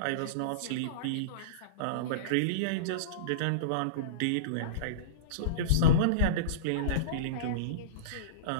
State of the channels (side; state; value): both; different; correlation -0.05